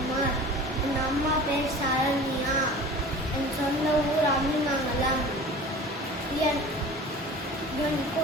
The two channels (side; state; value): both; normal; correlation 0.40